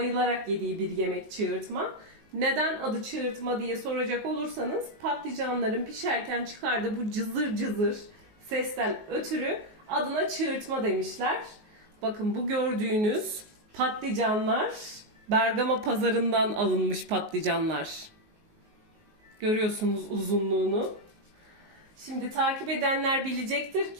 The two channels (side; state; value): left; late; 19 ms